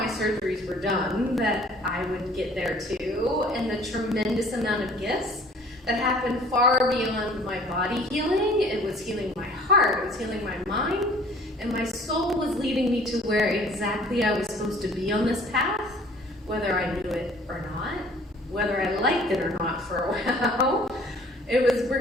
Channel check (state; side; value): normal; both; correlation 0.52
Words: surgeries were done, that I would get there too, and the tremendous amount of gifts that happened far beyond my body healing. It was healing my heart, it was healing my mind, and my soul was leading me to where exactly I was supposed to be on this path, whether I knew it or not. whether I liked it or not for a while. It was